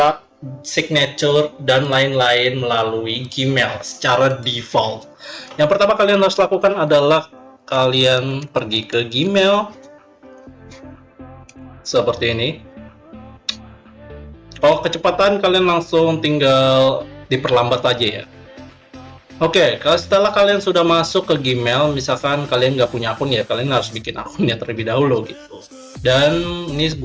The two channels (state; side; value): identical; both; correlation 1.00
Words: signature, dan lain-lain melalui Gmail secara default. Yang pertama kalian harus lakukan adalah kalian pergi ke Gmail seperti ini. Kalau kecepatan kalian langsung tinggal diperlambat aja ya. Oke, kalau setelah kalian sudah masuk ke Gmail, misalkan kalian nggak punya akun ya, kalian harus bikin akunnya terlebih dahulu gitu. Dan ini